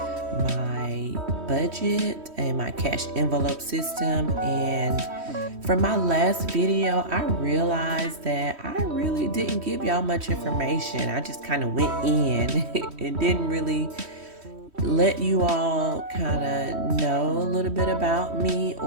budget and my cash envelope system. And from my last video, I realized that I really didn't give y'all much information. I just kind of went in and didn't really let you all kind of know a little bit about me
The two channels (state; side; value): late; left; 3.1 ms